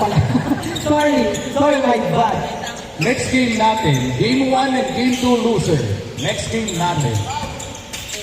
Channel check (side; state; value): both; identical; correlation 1.00